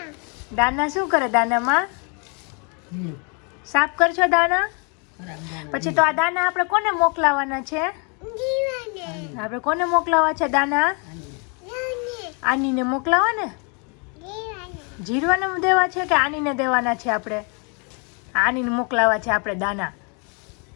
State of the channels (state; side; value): quieter; right; 35.5 dB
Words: દાના શું કરે? દાનામાં સાફ કરશો દાના? પછી તો આ દાના આપણે કોને મોકલાવાના છે? આપણે કોને મોકલાવા છે દાના? આનીને મોકલાવા ને? જીરવાને દેવા છે કે આનીને દેવાના છે? આપણે આનીને મોકલાવા છે આપણે દાના.